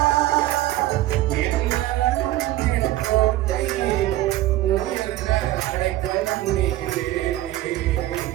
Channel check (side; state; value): left; quieter; 15.7 dB